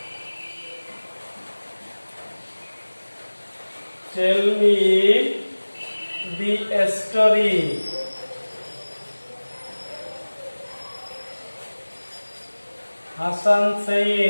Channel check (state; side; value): inverted; both; correlation -1.00